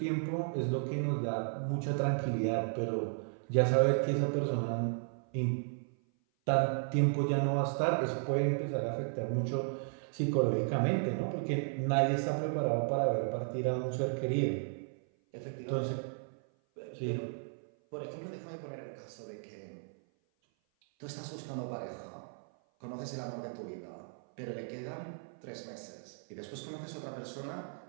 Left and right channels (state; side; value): silent; left; 55 dB below the other